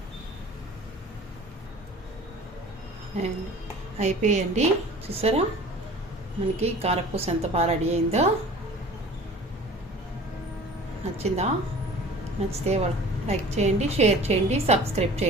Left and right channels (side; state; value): both; normal; correlation 0.43